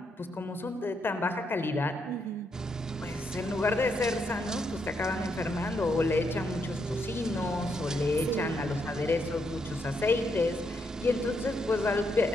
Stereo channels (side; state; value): both; normal; correlation 0.78